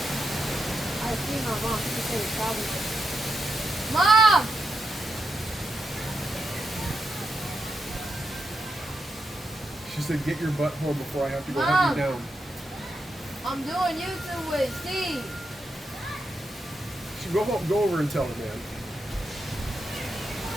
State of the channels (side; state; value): both; normal; correlation 0.84